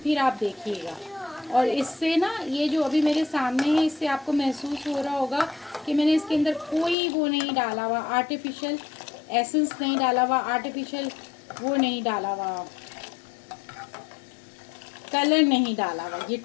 आप देखिएगा। और इससे ना ये जो अभी मेरे सामने है, इससे आपको महसूस हो रहा होगा कि मैंने इसके अंदर कोई वो नहीं डाला हुआ, आर्टिफिशियल एसेंस नहीं डाला हुआ, आर्टिफिशियल वो नहीं डाला हुआ, कलर नहीं डाला हुआ। ये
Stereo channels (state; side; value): drops out; right; at 7.0 s